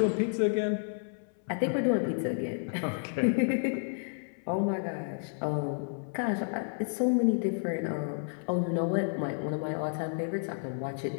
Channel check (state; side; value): silent; right; 57 dB below the other